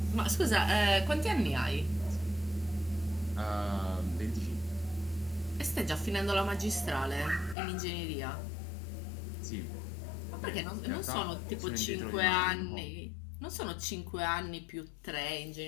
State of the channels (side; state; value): right; drops out; at 7.6 s